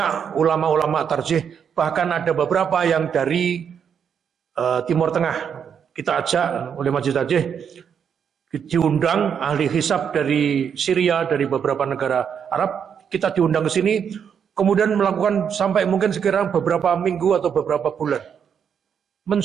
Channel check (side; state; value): left; quieter; 7.6 dB